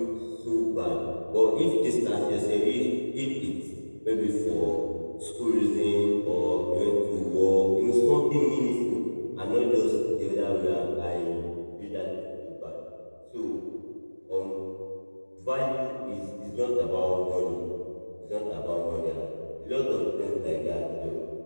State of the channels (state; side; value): inverted; both; correlation -1.00